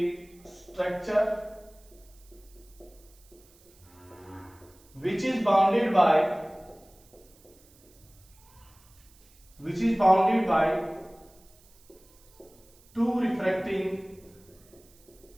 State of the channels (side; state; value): right; noise; hiss, 28 dB below the sound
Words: structure which is bounded by two refracting